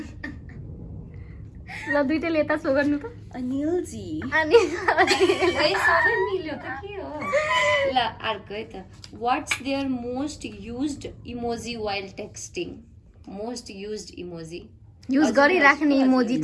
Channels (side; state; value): both; identical; correlation 1.00